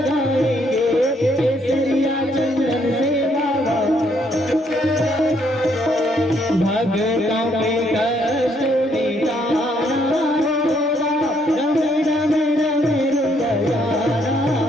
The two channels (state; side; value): normal; both; correlation 0.70